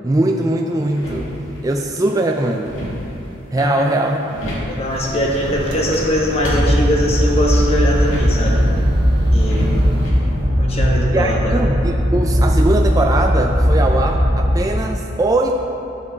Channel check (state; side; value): normal; both; correlation 0.78